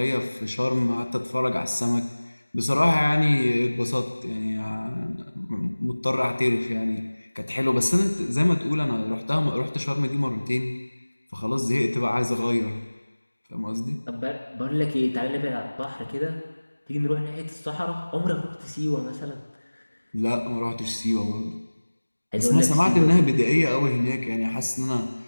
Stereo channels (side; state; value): both; inverted; correlation -1.00